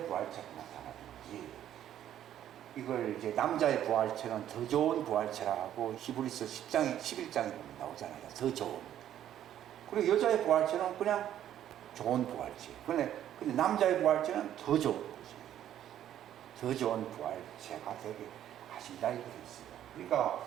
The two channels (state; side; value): quieter; left; 11.2 dB